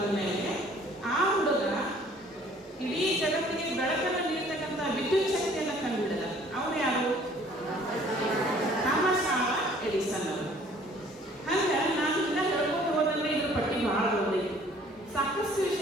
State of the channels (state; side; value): normal; both; correlation 0.56